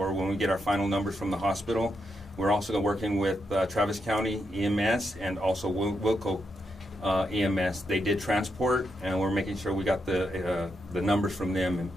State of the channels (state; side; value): normal; both; correlation 0.83